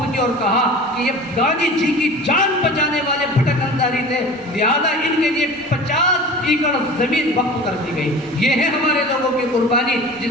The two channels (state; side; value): normal; both; correlation 0.38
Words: کی اور کہا کہ یہ گاندھی جی کی جان بچانے والے بھٹک انصاری تھے، لہذا ان کے لیے 50 ایکڑ زمین وقف کر دی گئی۔ یہ ہے ہمارے لوگوں کی قربانی جس